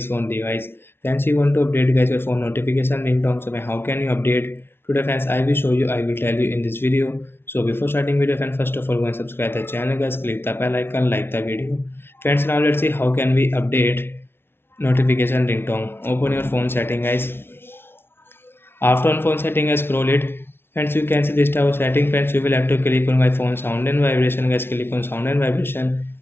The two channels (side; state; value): right; late; 0.11 ms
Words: phone device. Friends, you want to update guys your phone notification ringtone. So how can you update? Today friends I will show you, I will tell you in this video. So before starting video friends, first of all go and subscribe the channel guys, click the bell icon, like the video. Friends, now let's see how can we update notification ringtone. Open your phone setting guys. After on phone setting, I scroll it. Friends, you can see this type of setting. Friends, you will have to click on my phone sound and vibration. Guys, click on sound and vibration.